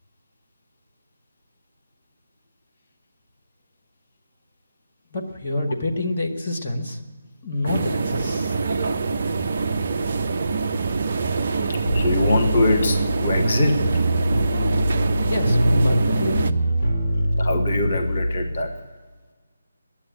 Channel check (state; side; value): inverted; both; correlation -0.86